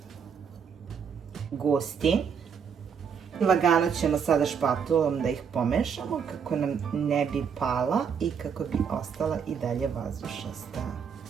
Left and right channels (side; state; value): left; quieter; 6.9 dB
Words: gustin. Lagano ćemo sada špatulom da ih pomešamo kako nam ne bi pala i kako bi ostala i dalje vazdušasta.